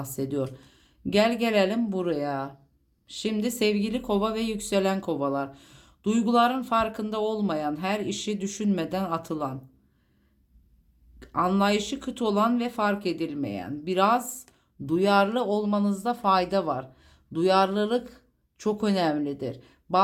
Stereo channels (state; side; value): identical; both; correlation 1.00